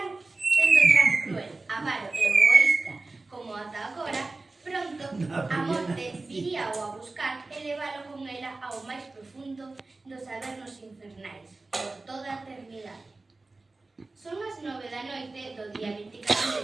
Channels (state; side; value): quieter; left; 3.4 dB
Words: tan cruel, avaro e egoísta como ata agora, pronto a morte viría a buscar e leválo con ela ao máis profundo dos avernos infernais, por toda a eternidade. Son as 9 da noite do día 24 de